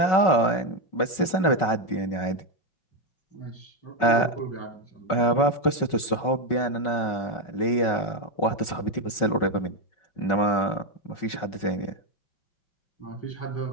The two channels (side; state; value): right; late; 5.4 ms